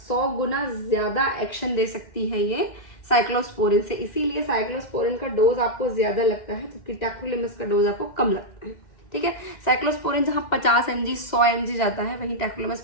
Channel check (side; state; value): right; late; 2.1 ms